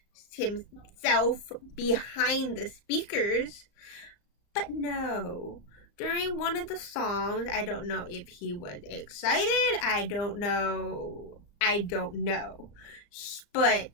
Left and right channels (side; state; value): right; late; 34 ms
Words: himself behind the speakers. But no. During one of the songs, I don't know if he was excited. I don't know. But